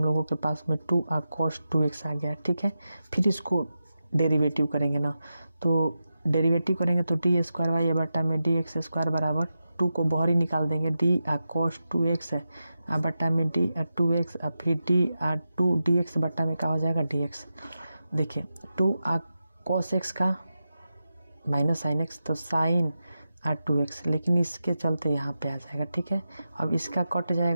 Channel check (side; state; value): both; inverted; correlation -0.91